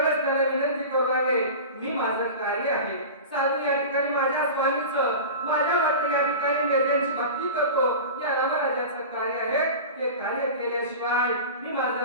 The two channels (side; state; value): both; inverted; correlation -0.32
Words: त्याला विनंती करू लागले मी माझं कार्य आहे साधू या ठिकाणी माझ्या स्वामीचं माझ्या भक्त या ठिकाणी त्यांची भक्ती करतो या रामराजाचं कार्य आहे ते कार्य केल्याशिवाय मी